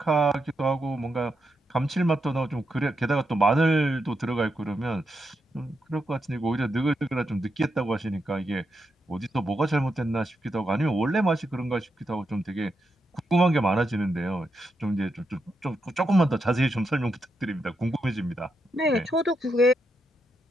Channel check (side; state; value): both; normal; correlation 0.83